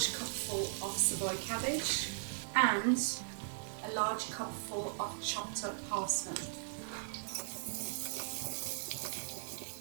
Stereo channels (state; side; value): silent; left; digital silence